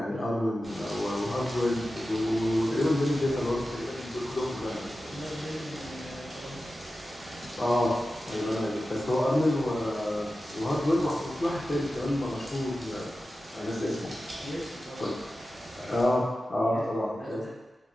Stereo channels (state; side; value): normal; both; correlation 0.93